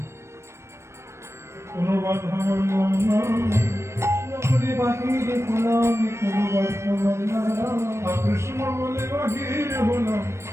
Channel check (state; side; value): late; left; 0.13 ms